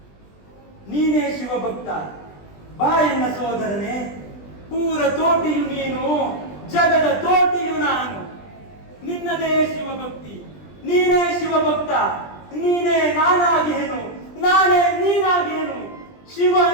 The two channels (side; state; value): right; late; 20 ms